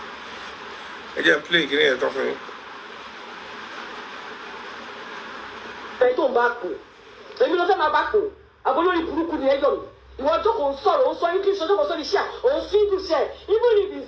Again, play, can you talk to me? I don't back. Let me know my back. I go to Buruku the Egon. You want to console, also English, also the share, or see to share, even if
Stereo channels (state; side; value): identical; both; correlation 1.00